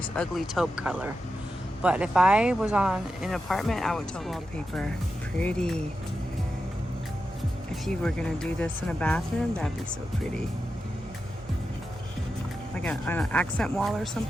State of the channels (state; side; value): normal; both; correlation 0.89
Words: ugly taupe color. But if I was on an apartment, I would totally wallpaper. Pretty. If you were gonna do this in a bathroom, that'd be so pretty. Like an accent wall or